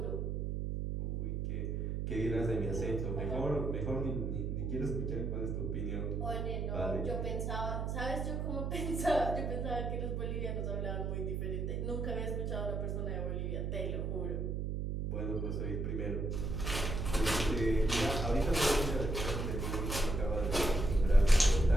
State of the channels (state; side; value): noise; right; hum, 1 dB below the sound